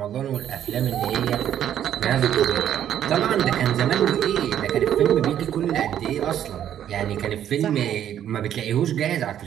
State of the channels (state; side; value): quieter; left; 10.4 dB